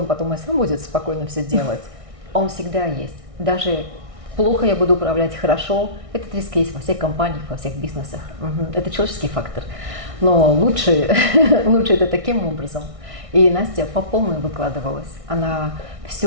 потом и сам будет спокойно все делать. Он всегда есть. Даже плохо я буду управлять хорошо, этот риск есть во всех компаниях, во всех бизнесах. Это человеческий фактор. Но лучше это таким образом. И Настя по полной выкладывалась. Она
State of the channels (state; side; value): late; left; 1.6 ms